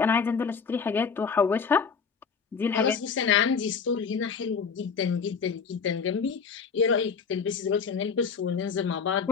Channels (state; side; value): quieter; right; 5.9 dB